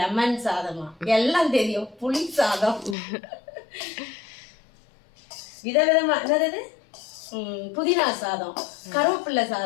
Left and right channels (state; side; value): drops out; right; at 3.0 s